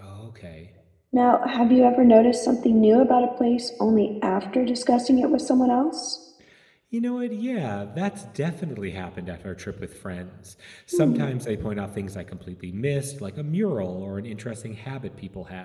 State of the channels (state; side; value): identical; both; correlation 1.00